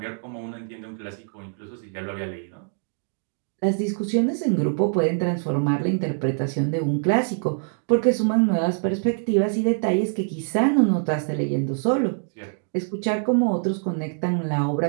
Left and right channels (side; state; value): left; silent; 62 dB below the other